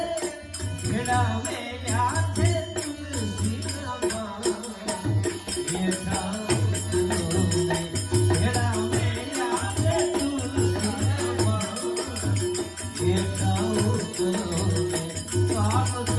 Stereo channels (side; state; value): both; identical; correlation 1.00